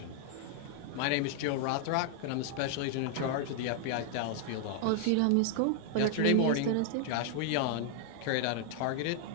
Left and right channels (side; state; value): both; different; correlation 0.00